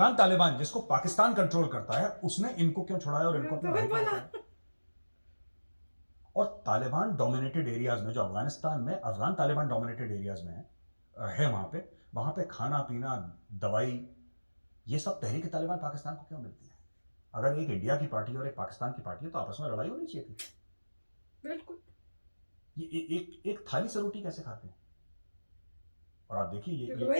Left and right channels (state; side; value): inverted; both; correlation -1.00